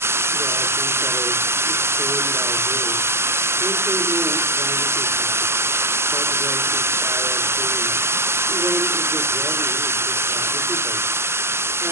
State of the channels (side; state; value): left; late; 0.12 ms